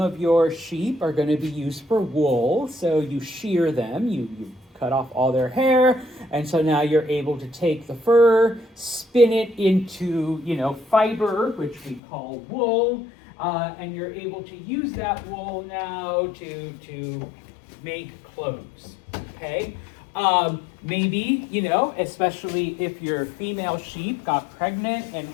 your sheep are going to be used for wool, so you shear them, you cut off all their hair, and so now you're able to take the fur, spin it into, fiber, which we call wool, and you're able to use that wool now to make clothes, okay? Maybe, especially if your female sheep got pregnant and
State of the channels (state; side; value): drops out; right; at 12.0 s